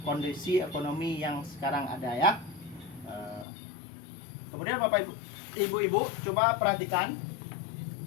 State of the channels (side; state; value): right; drops out; at 3.5 s